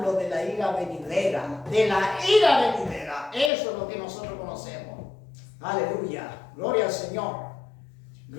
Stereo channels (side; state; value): right; drops out; at 3.5 s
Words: de la ira venidera, Eso es lo que nosotros conocemos. Aleluya, gloria al Señor,